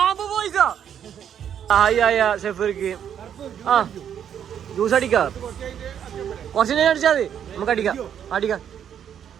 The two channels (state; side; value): quieter; left; 9.0 dB